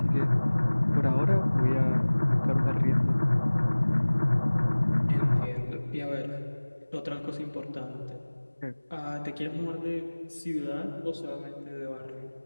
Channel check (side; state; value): both; inverted; correlation -1.00